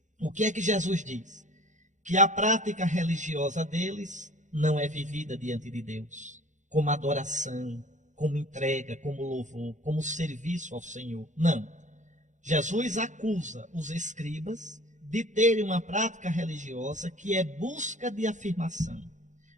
O que é que Jesus diz? Que a prática religiosa deles não é vivida diante de Deus, como adoração, como entrega, como louvor, como serviço ao Senhor. Não. Jesus acusa os escribas de terem uma prática religiosa que é busca de afirmação,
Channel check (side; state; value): left; late; 0.35 ms